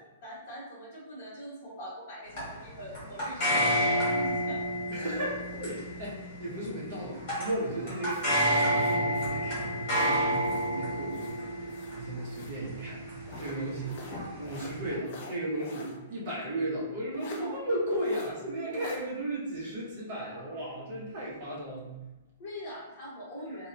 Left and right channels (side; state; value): both; inverted; correlation -0.52